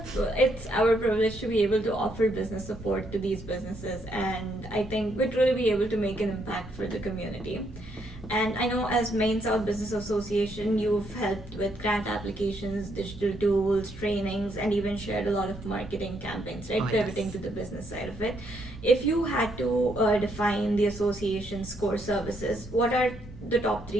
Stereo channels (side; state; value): both; normal; correlation 0.74